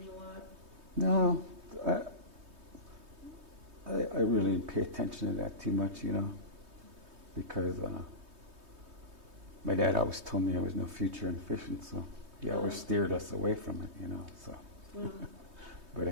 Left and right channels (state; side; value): late; left; 3.2 ms